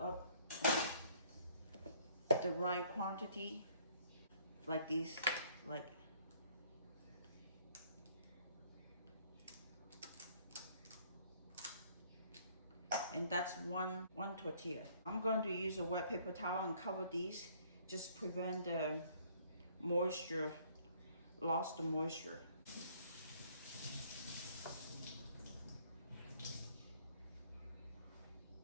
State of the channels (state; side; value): inverted; both; correlation -0.60